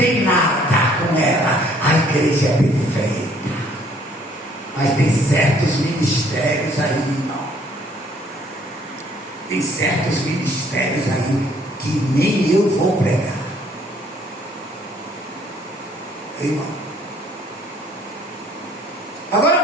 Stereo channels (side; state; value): both; normal; correlation 0.61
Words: nada com ela. A igreja é perfeita. Mas tem certos ministérios aí, irmão. Tem certos ministérios aí que nem eu vou pregar. Irmão.